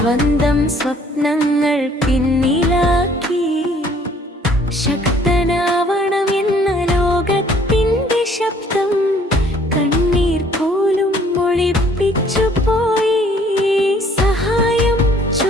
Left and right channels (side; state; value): both; normal; correlation 0.59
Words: സ്വപ്നങ്ങൾ പിന്നിലാക്കി, ശക്തനാവണം എന്ന ലോകത്തിൻ്റെ ശബ്ദം കണ്ണീർ പോലും ഒളിപ്പിച്ചു പോയി. സഹായം